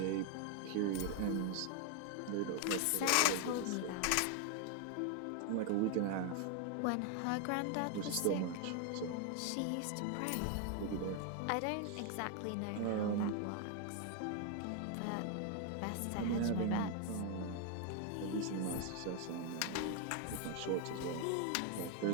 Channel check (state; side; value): different; both; correlation 0.01